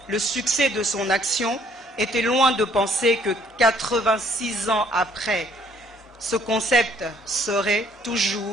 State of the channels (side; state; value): both; normal; correlation 0.62